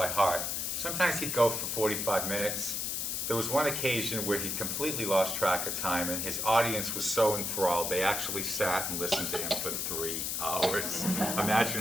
heart. Sometimes he'd go for 45 minutes. There was one occasion where he completely lost track of time, and his audience was so enthralled, they actually sat and listened to him for 3 hours.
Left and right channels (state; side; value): noise; left; hiss, 1 dB below the sound